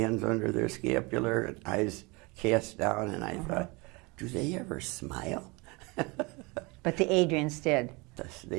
under their scapular and eyes cast down, and I thought, do they ever smile? But the Adrians did.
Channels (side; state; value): left; quieter; 26.7 dB